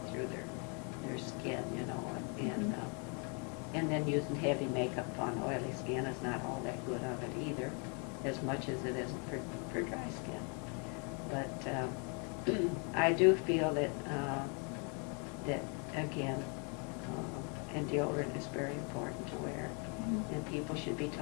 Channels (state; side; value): quieter; right; 36.7 dB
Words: through their skin, and then using heavy makeup on oily skin is not all that good of it either, as much as it is for dry skin. But I do feel that again, and deodorant is very important to wear. And people should be